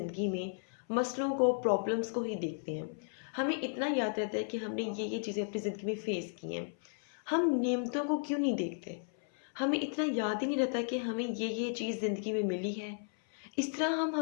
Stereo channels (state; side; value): silent; right; 55 dB below the other